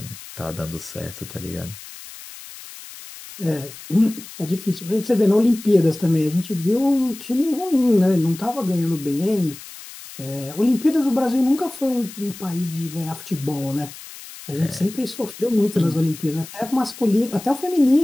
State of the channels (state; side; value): noise; left; hiss, 15 dB below the sound